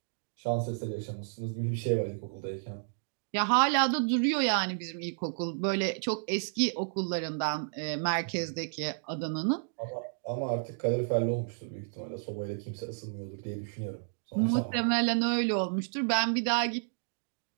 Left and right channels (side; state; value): left; silent; digital silence